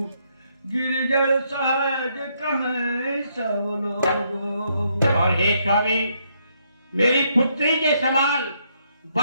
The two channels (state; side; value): inverted; both; correlation -0.74